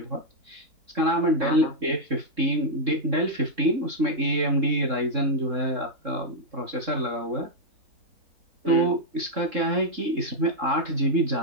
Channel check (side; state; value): left; late; 3.7 ms